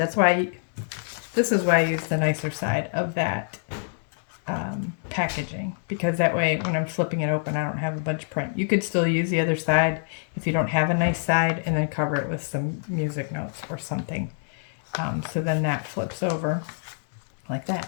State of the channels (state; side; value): silent; right; digital silence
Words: why, this is why I use the nicer side of that packaging, because that way when I'm flipping it open I don't have a bunch of print. You could still use the other side if you don't have a nice side, and then cover it with some music notes or something. So then that flips over like